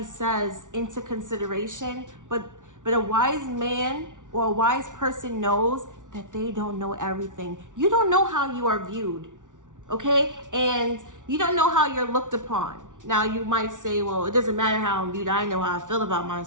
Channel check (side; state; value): left; late; 0.87 ms